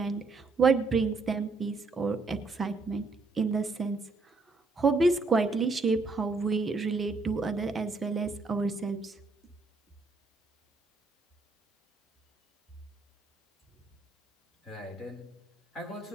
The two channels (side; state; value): left; quieter; 3.7 dB